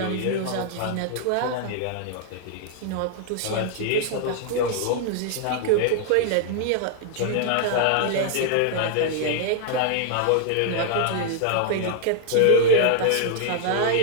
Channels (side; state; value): both; different; correlation 0.00